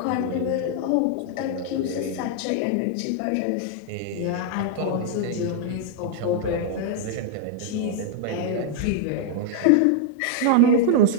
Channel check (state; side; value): different; both; correlation 0.00